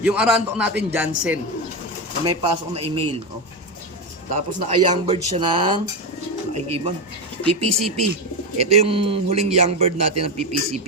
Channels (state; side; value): normal; both; correlation 0.13